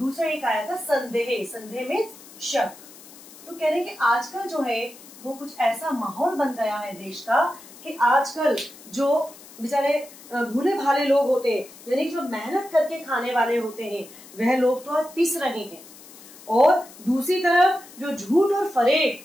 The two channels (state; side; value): noise; left; hiss, 20 dB below the sound